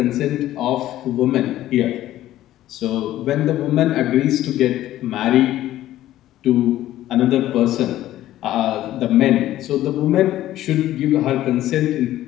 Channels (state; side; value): quieter; right; 13.9 dB